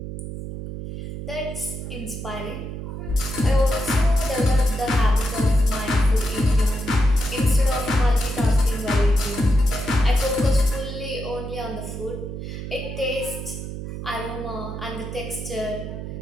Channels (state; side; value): noise; right; hum, 8 dB below the sound